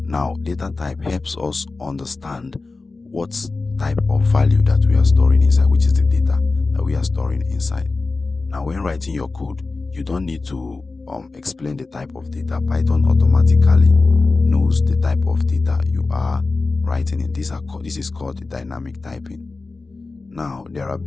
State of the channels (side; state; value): right; quieter; 3.7 dB